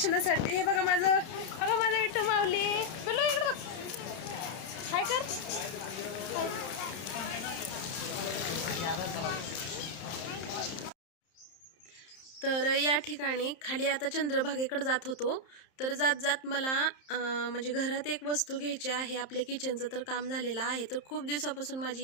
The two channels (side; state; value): right; late; 31 ms